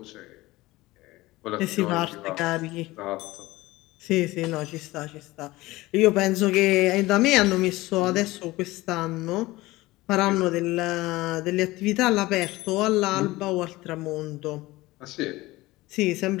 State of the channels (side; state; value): right; quieter; 19.2 dB